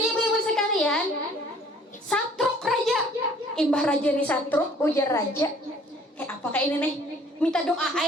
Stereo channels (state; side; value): normal; both; correlation 0.55